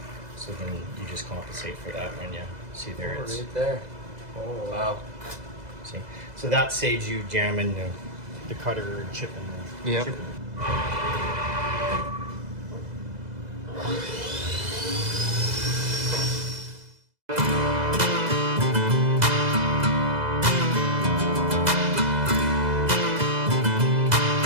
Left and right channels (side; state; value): left; late; 2.0 ms